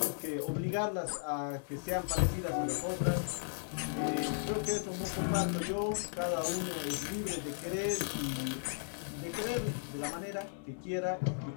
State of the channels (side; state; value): right; silent; digital silence